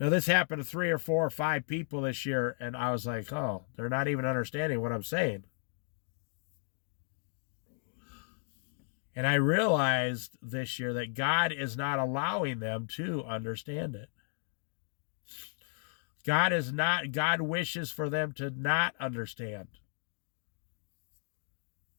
this happened to 3 or 4 or 5 people this year, and I was like, oh, they're not even understanding what I'm saying. And I realized this year that God is not allowing them to understand it. God wishes for them to not understand.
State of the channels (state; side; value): silent; right; digital silence